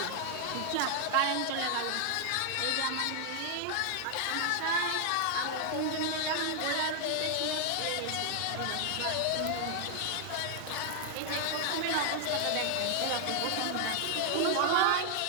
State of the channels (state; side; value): different; both; correlation 0.00